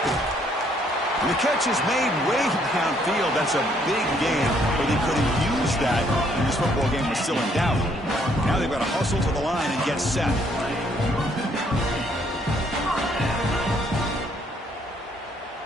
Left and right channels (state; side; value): normal; both; correlation 0.67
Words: And the catch is made way downfield. That's a big gain, but they couldn't use that when this football game was still in doubt. Now they've got to hustle to the line and get set.